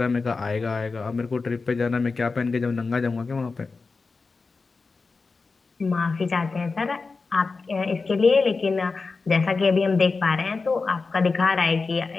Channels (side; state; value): right; quieter; 4.2 dB